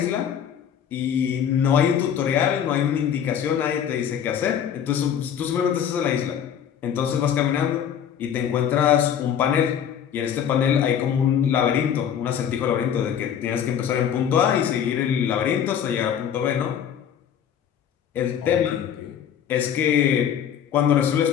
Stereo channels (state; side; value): quieter; right; 8.8 dB